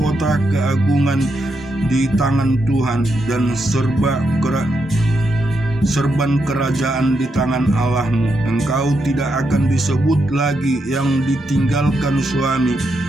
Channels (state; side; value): normal; both; correlation 0.82